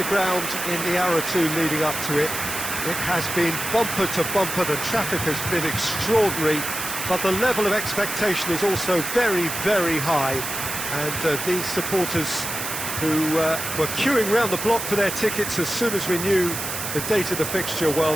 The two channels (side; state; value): right; noise; hiss, 5 dB below the sound